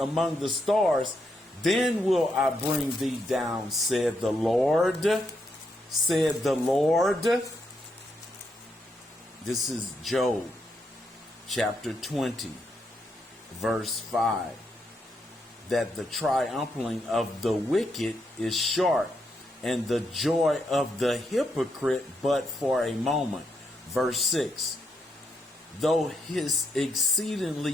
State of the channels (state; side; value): normal; both; correlation 0.80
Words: the stars, then will I bring thee down, said the Lord. Said the Lord. This is Job, chapter 20, verse 5. That the triumphing of the wicked is short, and the joy of the hypocrite but for a moment. Verse 6. Though his